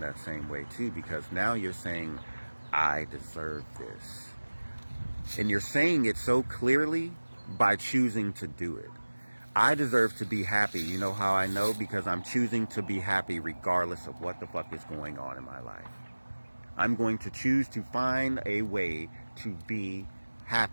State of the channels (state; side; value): inverted; both; correlation -1.00